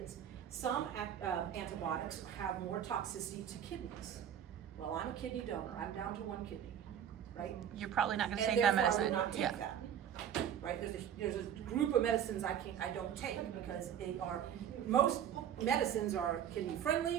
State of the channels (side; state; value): left; quieter; 9.5 dB